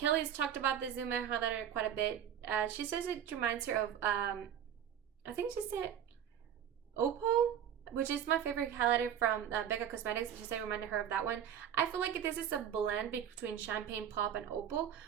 talked about the Zuma Highlighter quite a bit. She says it reminds her of, I think she said Opal, which is my favorite highlighter from Becca Cosmetics. She said it reminded her of that one. I feel like this is a blend between Champagne Pop and Opal,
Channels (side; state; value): left; quieter; 9.3 dB